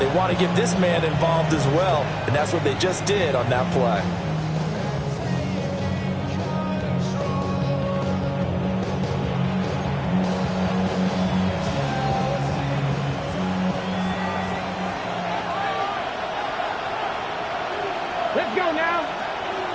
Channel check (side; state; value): both; identical; correlation 1.00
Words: want to get this man involved as well, and that's what they just did on that play. Let's go now.